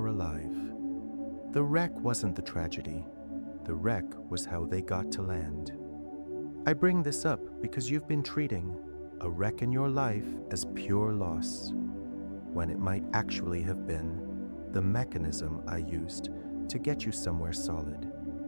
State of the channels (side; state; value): both; inverted; correlation -1.00